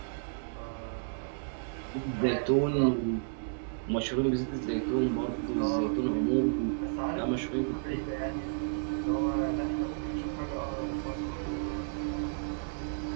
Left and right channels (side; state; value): left; silent; digital silence